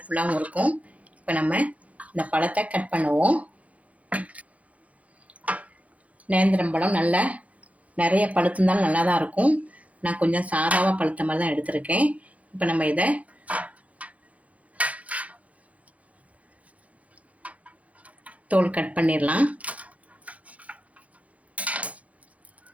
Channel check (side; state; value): left; late; 0.067 ms